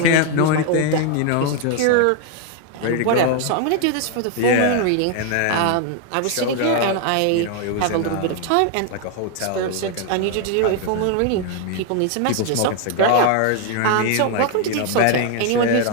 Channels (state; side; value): different; both; correlation 0.00